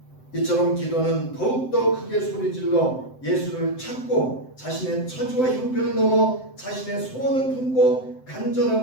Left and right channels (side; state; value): right; late; 7.8 ms